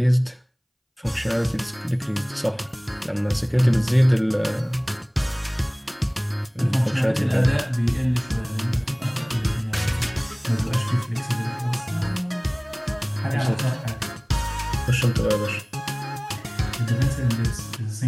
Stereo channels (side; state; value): both; identical; correlation 1.00